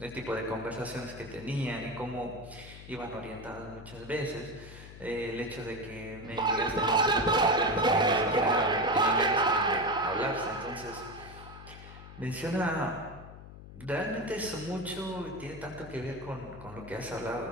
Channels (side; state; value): left; noise; hum, 15 dB below the sound